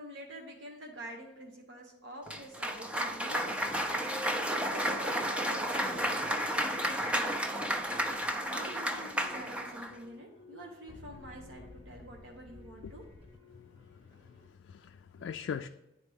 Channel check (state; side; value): normal; both; correlation 0.46